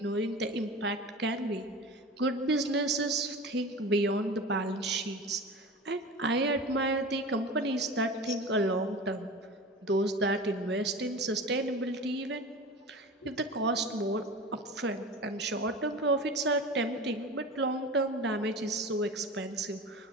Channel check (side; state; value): both; normal; correlation 0.33